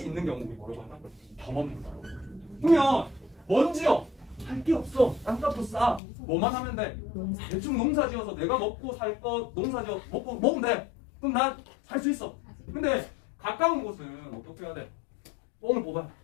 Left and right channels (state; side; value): drops out; right; at 6.0 s